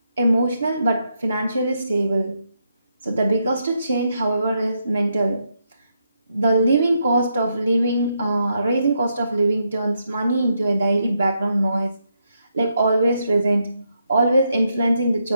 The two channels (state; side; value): inverted; both; correlation -0.80